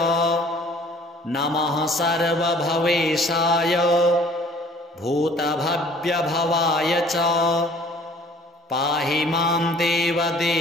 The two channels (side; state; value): both; normal; correlation 0.54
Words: नमः सर्वभवेशाय भूतभव्यभवाय च पाहि मां